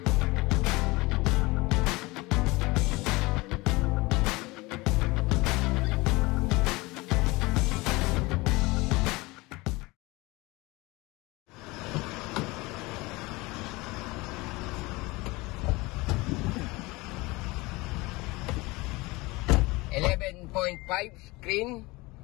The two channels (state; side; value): quieter; right; 22.7 dB